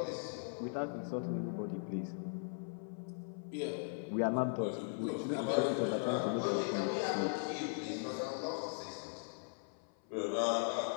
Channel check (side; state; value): right; silent; 52 dB below the other